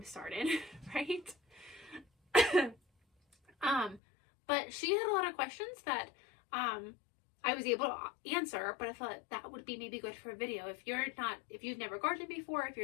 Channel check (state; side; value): drops out; right; at 4.0 s